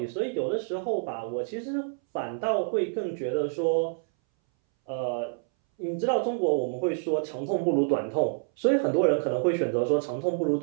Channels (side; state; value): left; silent; 60 dB below the other